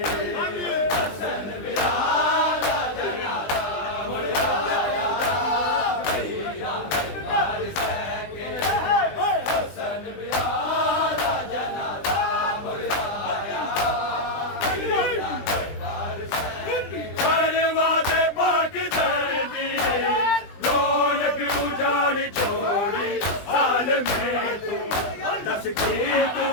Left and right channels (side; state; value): right; late; 20 ms